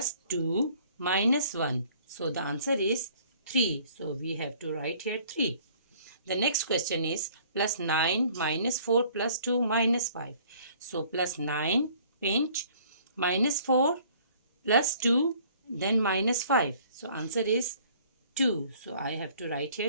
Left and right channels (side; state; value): both; inverted; correlation -0.56